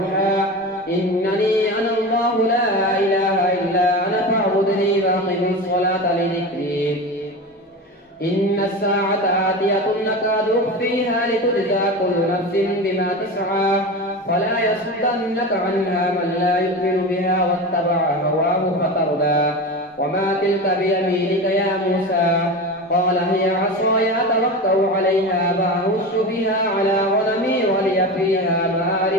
إنني أنا الله لا إله إلا أنا فاعبدني وأقم الصلاة لذكري. إن الساعة آتية نكاد أخفيها لتجزى كل نفس بما تسعى فلا يصدنك عنها من لا يؤمن بها واتبع هواه فتردى. وما تلك بيمينك يا موسى؟ قال هي عصاي أتوكل عليها وأهش بها على غنمي ولي فيها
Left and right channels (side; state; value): both; normal; correlation 0.26